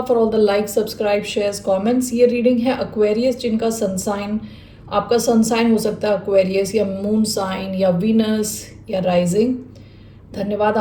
for all the like, subscribe, shares, comments. ये रीडिंग है एक्वेरियस जिनका सन साइन, आपका सन साइन हो सकता है एक्वेरियस या मून साइन या वीनस या राइजिंग। धन्यवाद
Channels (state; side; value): identical; both; correlation 1.00